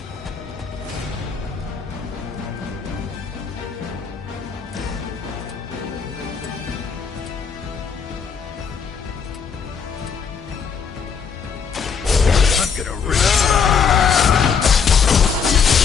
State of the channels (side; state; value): right; quieter; 6.3 dB